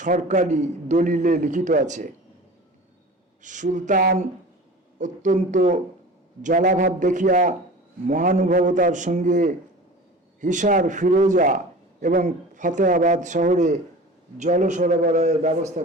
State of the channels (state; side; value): normal; both; correlation 0.38